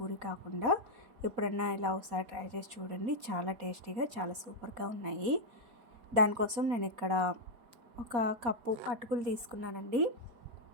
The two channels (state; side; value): late; left; 4.1 ms